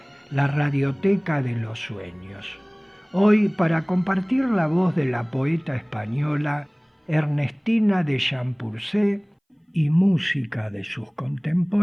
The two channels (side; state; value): both; identical; correlation 1.00